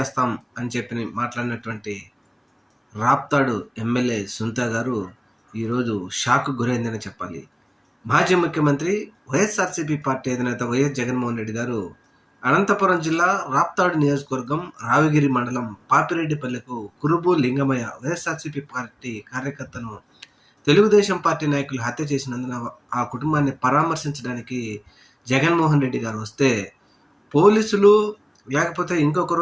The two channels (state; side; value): identical; both; correlation 1.00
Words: అని చెప్పి మాట్లాడినటువంటి రాప్తాడు ఎమ్మెల్యే సునీత గారు ఈరోజు షాక్‌కు గురైందని చెప్పాలి. మాజీ ముఖ్యమంత్రి వైఎస్ఆర్‌సీపీ పార్టీ అధినేత వైఎస్ జగన్మోహన్ రెడ్డి గారు అనంతపురం జిల్లా రాప్తాడు నియోజకవర్గం రావిగిరి మండలం పాపిరెడ్డిపల్లెకు కురుబు లింగమయ్య వైఎస్ఆర్‌సీపీ పార్టీ కార్యకర్తను తెలుగుదేశం పార్టీ నాయకులు హత్య చేసినందున ఆ కుటుంబాన్ని పరామర్శించడానికి జగన్మోహన్ రెడ్డి గారు వస్తే, పోలీసులు లేకపోతే